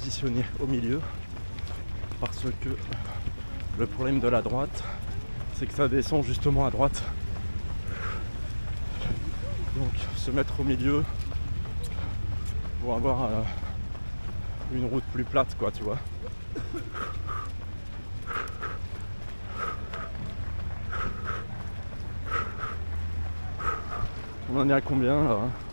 au milieu parce que le problème de la droite, c'est que ça descend justement à droite. Donc se mettre au milieu pour avoir une route plus plate, quoi, tu vois. On en est à combien là?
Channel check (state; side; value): inverted; both; correlation -1.00